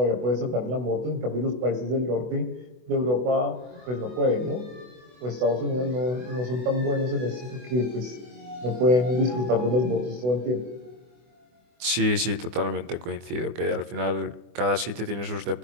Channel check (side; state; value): left; late; 24 ms